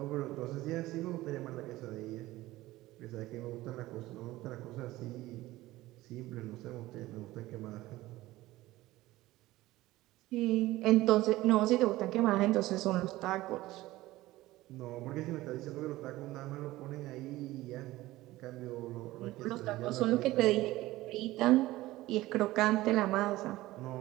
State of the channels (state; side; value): quieter; left; 17.4 dB